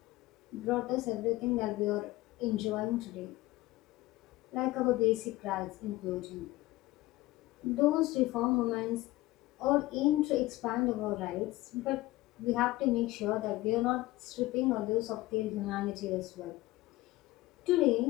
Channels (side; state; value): right; quieter; 18.4 dB